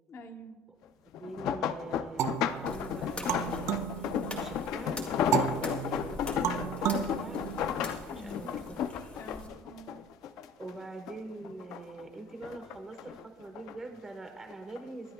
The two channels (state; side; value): normal; both; correlation 0.45